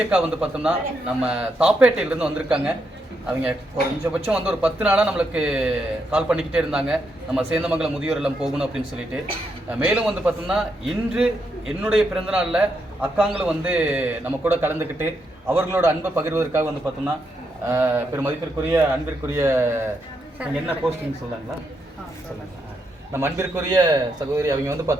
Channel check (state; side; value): normal; both; correlation 0.80